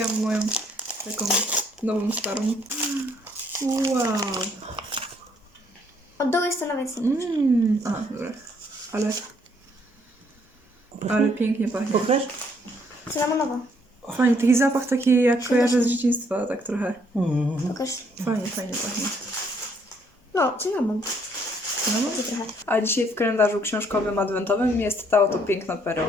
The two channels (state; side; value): normal; both; correlation 0.67